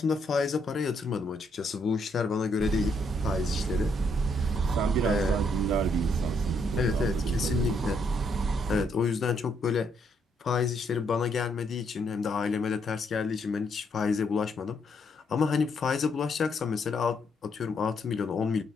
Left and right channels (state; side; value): normal; both; correlation 0.73